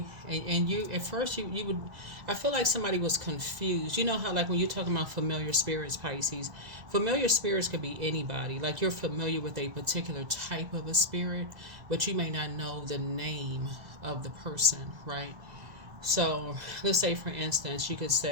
and you, at first you would, I feel like somebody was confused. You know how, like, when you're talking about familiar spirits, Pisces, familiar spirits could be anybody. Like, you're familiar with a particular type of a spirit, but you may not know the name of the person, right? So, let's say, for instance, you could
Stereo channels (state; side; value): late; left; 2.0 ms